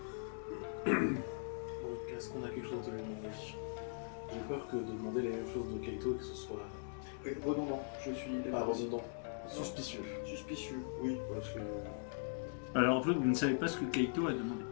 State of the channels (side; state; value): right; silent; digital silence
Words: Donc, est-ce qu'on a quelque chose de lui demander? J'ai peur que de demander les mêmes choses de Kaito, que ce soit Oui, redondant, je suis pas redondant, suspicieux. Suspicieux, oui. Parce que... Alors en fait, vous ne savez pas ce que Kaito a demandé.